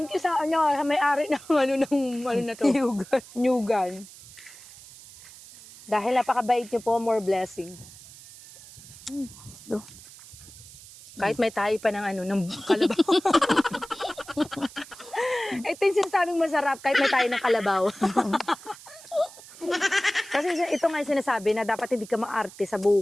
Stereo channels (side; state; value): right; noise; hiss, 19 dB below the sound